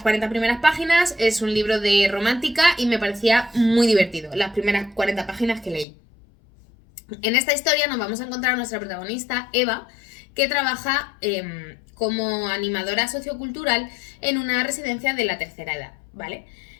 primeras páginas, es un libro de romántica y me parecía muy divertido, las primeras 40 páginas que leí. En esta historia nos vamos a encontrar a nuestra protagonista, Eva, que trabaja como animadora sociocultural en una residencia de la tercera edad, ¿vale?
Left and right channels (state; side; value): drops out; right; at 5.9 s